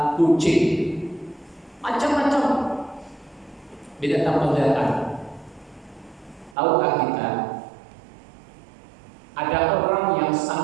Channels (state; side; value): drops out; left; at 6.6 s